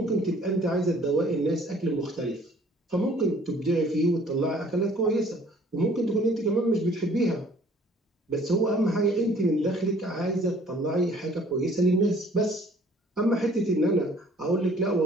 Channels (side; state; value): both; normal; correlation 0.55